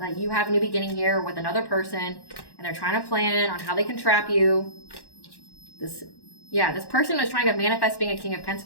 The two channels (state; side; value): late; right; 1.1 ms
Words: you have a new beginning here with another person, and they're trying to plan on how they can trap you. This person is trying to manifest being a King of